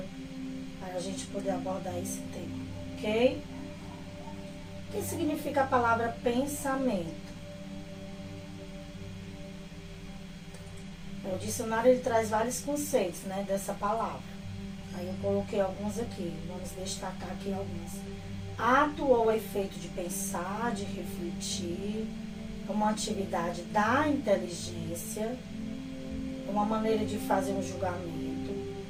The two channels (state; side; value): identical; both; correlation 1.00